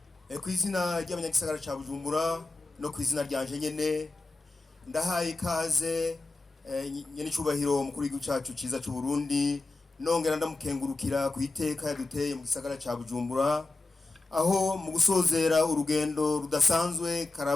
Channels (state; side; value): quieter; right; 3.3 dB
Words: Kwizina ry'abanyagisagara ca Bujumbura no kwizina ryanje nyene ndahaye ikaze nyene cubahiro mukuru w'igihugu cacu ciza c'u Burundi, nongera ndamukengurukira ku iteka yaduteye mu gisagara ca Bujumbura, aho mu gusozera urugendo rudasanzwe